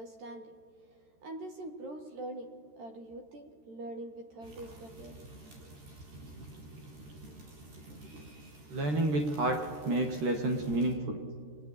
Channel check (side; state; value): left; late; 13 ms